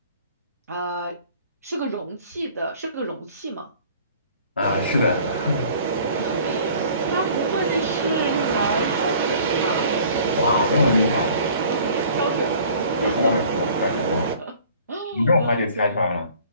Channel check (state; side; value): inverted; both; correlation -0.51